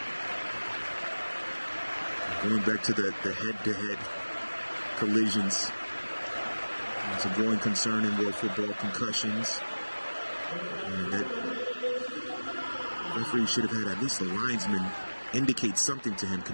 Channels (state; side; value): inverted; both; correlation -1.00